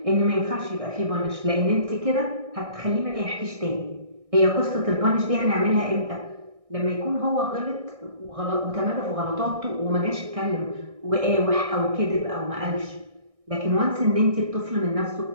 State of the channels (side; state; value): left; late; 1.6 ms